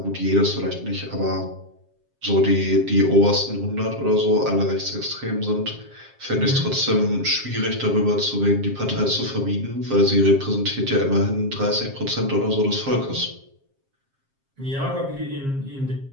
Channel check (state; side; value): late; left; 7.4 ms